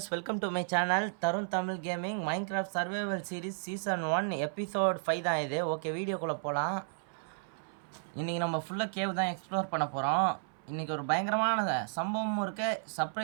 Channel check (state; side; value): silent; left; 56 dB below the other